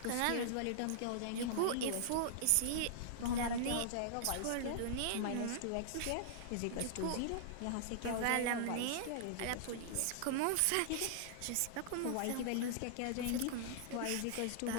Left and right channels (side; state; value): both; different; correlation -0.01